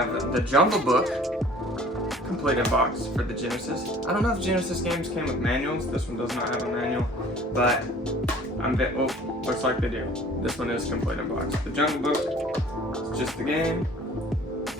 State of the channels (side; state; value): both; normal; correlation 0.50